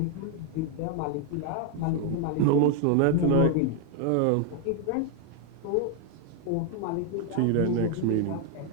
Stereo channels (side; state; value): both; different; correlation 0.00